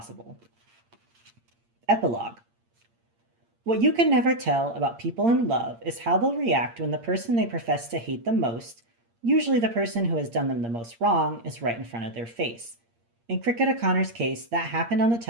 Epilogue. What you can never tell about people in love is how they'll react when the person they profess to hate the most, usually the person who has done them the most wrong, is right in front of their face. In Cricket O'Connor's case, that happened on the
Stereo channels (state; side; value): late; left; 8.6 ms